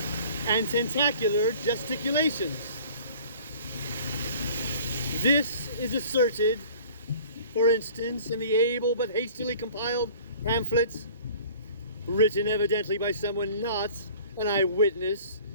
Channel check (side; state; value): both; inverted; correlation -0.48